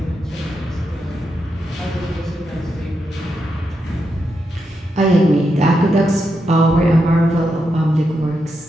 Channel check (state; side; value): normal; both; correlation 0.84